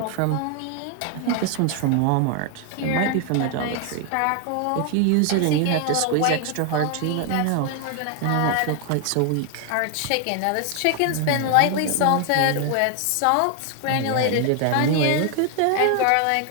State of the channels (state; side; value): different; both; correlation 0.00